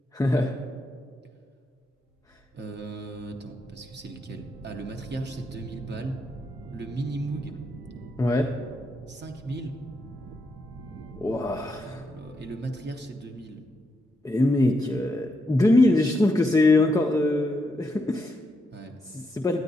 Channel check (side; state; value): both; normal; correlation 0.81